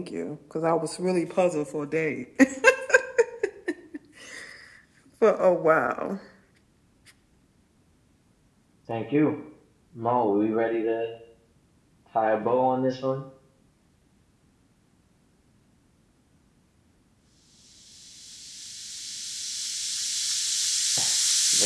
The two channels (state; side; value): identical; both; correlation 1.00